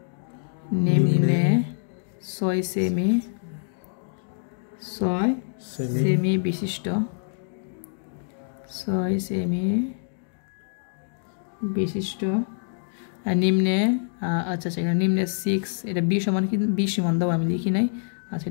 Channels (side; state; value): right; silent; digital silence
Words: নিম্নে 6 সেমি বিশিষ্ট 6 সেমি বিশিষ্ট নিম্নে, আচ্ছা সেখানে নিম্নে 6, এটা বি সমান কি? বি সমান দাও, আমি লিখি নাই। আচ্ছা,